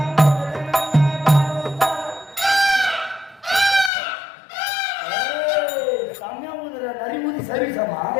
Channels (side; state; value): right; drops out; at 3.9 s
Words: செம்மையா ஊதுற நரி ஊதி சர்வீஸாமா